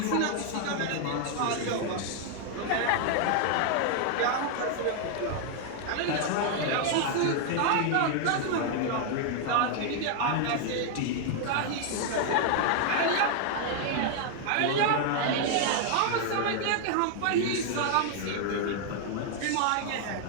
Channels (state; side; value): different; both; correlation 0.00